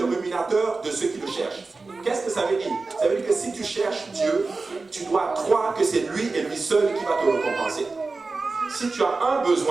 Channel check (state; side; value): quieter; left; 3.8 dB